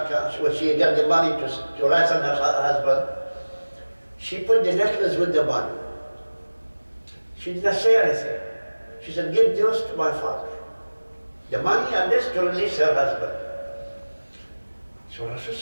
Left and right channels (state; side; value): inverted; both; correlation -1.00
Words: when she got the money to ransom her husband, she put the necklace with the money. She did not say anything. She said, give this to my father. The money and this to release her husband. So